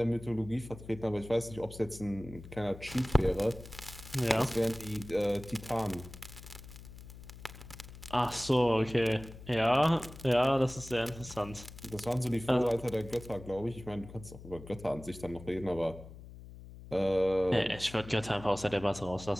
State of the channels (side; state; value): left; noise; hum, 16 dB below the sound